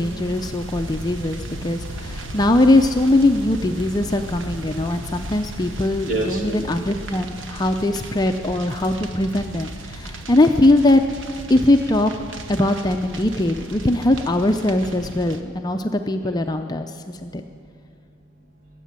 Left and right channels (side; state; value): both; normal; correlation 0.76